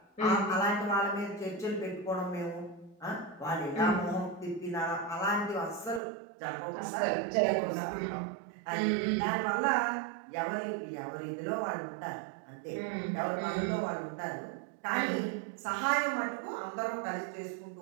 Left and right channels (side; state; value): left; drops out; at 6.0 s